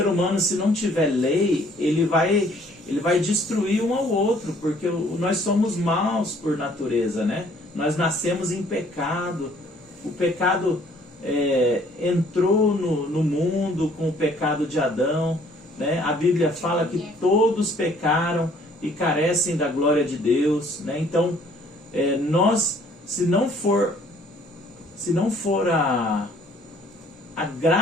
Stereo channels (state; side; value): normal; both; correlation 0.59